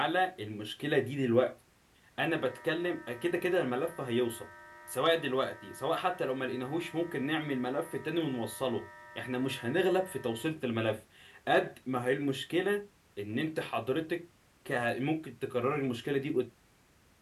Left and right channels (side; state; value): both; identical; correlation 1.00